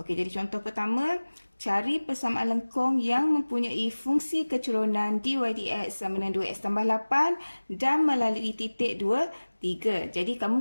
jadi contoh pertama, cari persamaan lengkung yang mempunyai fungsi kecerunan dy dx sama dengan 2x tambah 8 dan melalui titik 2, 3. Jadi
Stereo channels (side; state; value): both; inverted; correlation -1.00